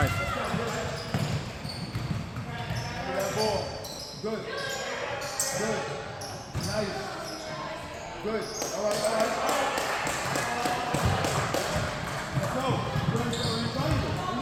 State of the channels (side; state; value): both; identical; correlation 1.00